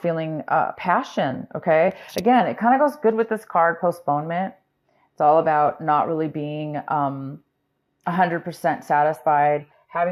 feeling passion, okay? Again, it kind of goes good with this card, postponement. It's all about not really being 100% satisfied,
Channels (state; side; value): identical; both; correlation 1.00